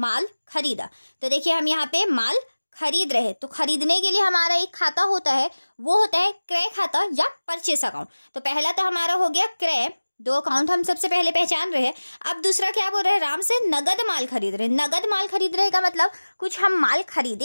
खरीदा। तो देखिए, हम यहाँ पे माल खरीद रहे हैं, तो खरीदने के लिए हमारा एक खाता होता है, वो होता है क्रय खाता या परचेस अकाउंट। तो पहला तो हमारा हो गया क्रय, दो अकाउंट हम सबसे पहले पहचान रहे हैं। अब दूसरा क्या बोल रहे हैं, राम से नगद माल खरीद रहे हैं। नगद माल खरीद रहे का मतलब कुछ हम माल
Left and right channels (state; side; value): inverted; both; correlation -1.00